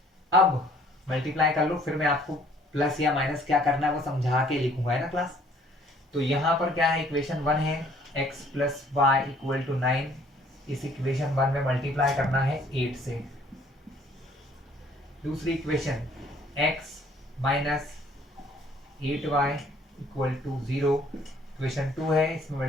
अब मल्टीप्लाई कर लो, फिर मैं आपको प्लस या माइनस क्या करना है वो समझा के लिखूंगा, है ना क्लास। तो यहां पर क्या है, इक्वेशन 1 है x plus Y equal to 9, इस इक्वेशन 1 में मल्टीप्लाई करना है 8 से। दूसरी equation x minus 8y equal to 0, equation 2 है, इसमें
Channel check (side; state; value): both; normal; correlation 0.59